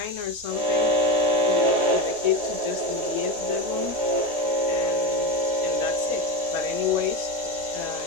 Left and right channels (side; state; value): left; late; 4.2 ms